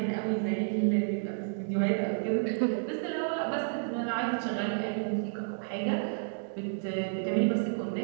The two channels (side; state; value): left; silent; digital silence